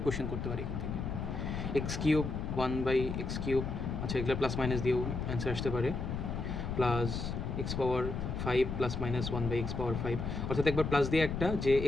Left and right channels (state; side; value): noise; left; rumble, 3 dB below the sound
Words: কোশ্চেন করতে পারি এখান থেকে। X cube, one by x cube, আচ্ছা এগুলো প্লাস মাইনাস দিয়েও অ্যান্সার আসতে পারে। Plus x power 5 plus minus one by x power 5, অর্থাৎ একবার প্লাস দিয়ে একটা যে